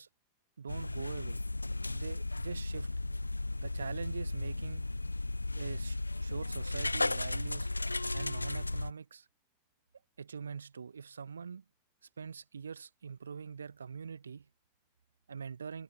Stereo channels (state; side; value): inverted; both; correlation -0.95